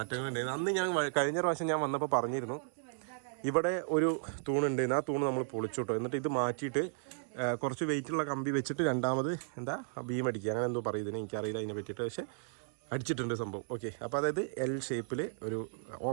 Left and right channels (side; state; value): left; silent; digital silence